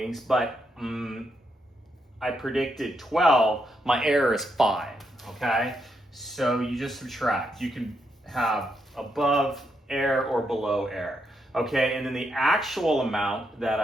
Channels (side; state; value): both; normal; correlation 0.80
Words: but I predicted 12, my error is 5, okay? So you just subtract. You can have above error or below error, okay? And then the actual amount that